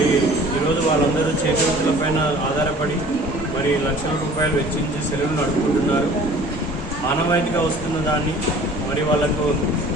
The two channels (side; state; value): both; normal; correlation 0.48